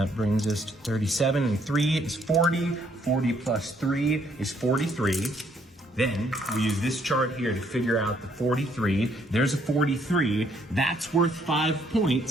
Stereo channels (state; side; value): normal; both; correlation 0.68